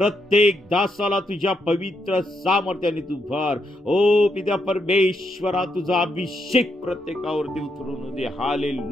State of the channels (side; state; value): both; normal; correlation 0.80